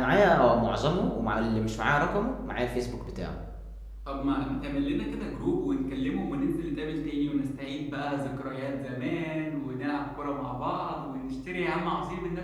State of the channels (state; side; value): identical; both; correlation 1.00